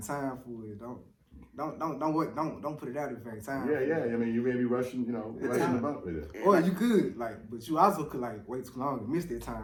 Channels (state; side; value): identical; both; correlation 1.00